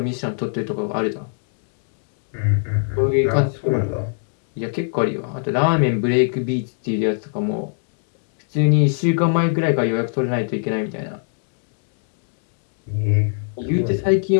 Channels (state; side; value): silent; right; 64 dB below the other